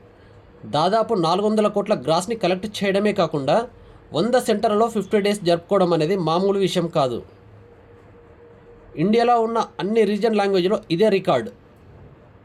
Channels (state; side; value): identical; both; correlation 1.00